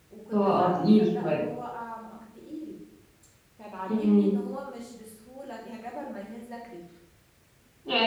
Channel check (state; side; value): identical; both; correlation 1.00